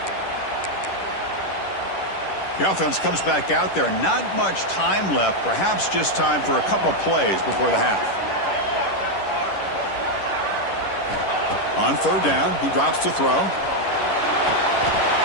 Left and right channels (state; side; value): late; right; 10 ms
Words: The offense comes back out there. Not much time left. Perhaps just time for a couple plays before the half. On third down, he drops to throw.